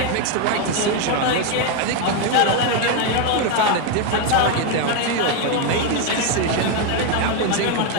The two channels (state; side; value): different; both; correlation 0.02